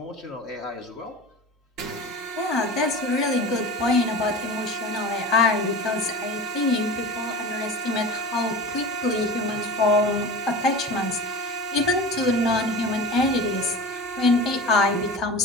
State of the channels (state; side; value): normal; both; correlation 0.33